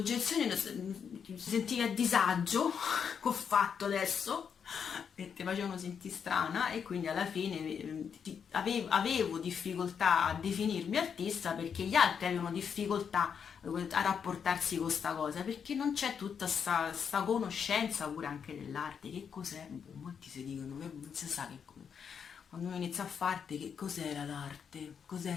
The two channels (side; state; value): right; quieter; 7.1 dB